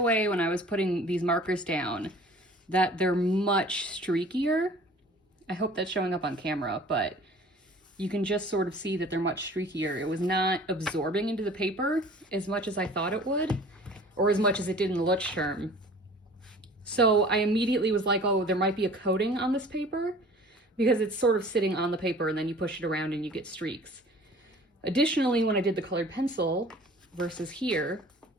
when I was putting these markers down that they're much streakier. I hope that's showing up on camera, but you can just sort of see that they're much streakier. It was not absorbing into the paper as much as I thought it would, or as much as it did in the Leuchtturm. So I immediately was like, oh, there might be a coating on this paper because it's sort of sitting on the paper and then you push it around and you get streaks. Additionally, when I did the colored pencil versus here,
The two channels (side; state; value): both; normal; correlation 0.47